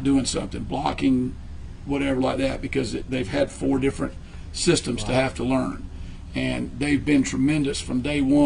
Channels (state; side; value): identical; both; correlation 1.00